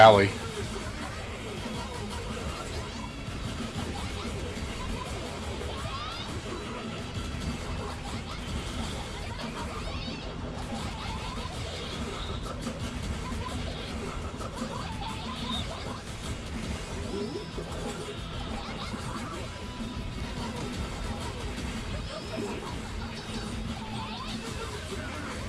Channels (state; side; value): identical; both; correlation 1.00